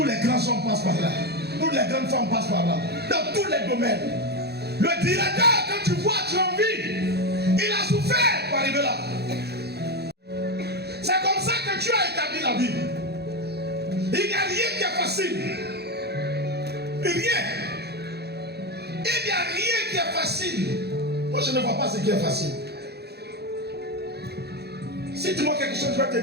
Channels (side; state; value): left; late; 0.48 ms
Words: les grands hommes passent par là. Toutes les grandes femmes passent par là. Dans tous les domaines. Le directeur que tu vois, tu as envie, il a souffert pour arriver là. C'est comme ça que Dieu a établi la vie. Il n'y a rien qui est facile. Rien. Il n'y a rien qui est facile. Moi, je ne vois pas ce qui est facile. Si tu vois quelque chose, je vais